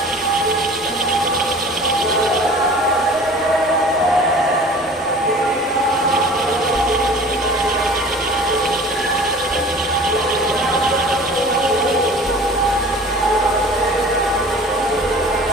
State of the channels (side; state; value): both; normal; correlation 0.43